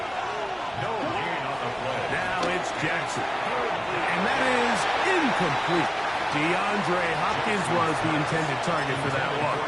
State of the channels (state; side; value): noise; right; hum, 27 dB below the sound